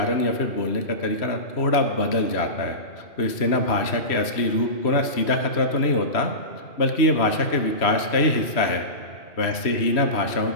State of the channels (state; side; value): late; right; 3.0 ms